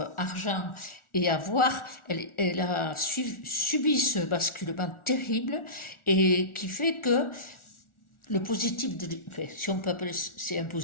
argent et avoir, elle a subi ce basculement terrible et qui fait que le positif si on peut appeler c'est un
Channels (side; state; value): right; late; 1.4 ms